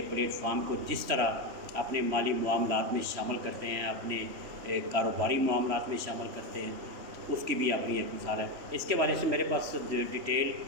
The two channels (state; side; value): late; left; 3.1 ms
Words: پلیٹ فارم کو جس طرح اپنے مالی معاملات میں شامل کرتے ہیں، اپنے کاروباری معاملات میں شامل کرتے ہیں، اس کی بھی اپنی ایک مثال ہے۔ اس کے والے سے میرے پاس ڈیٹیل